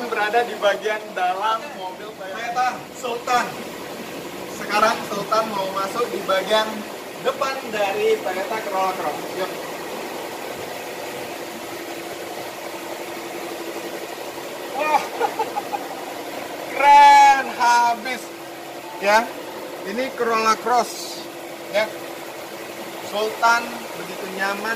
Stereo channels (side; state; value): both; identical; correlation 1.00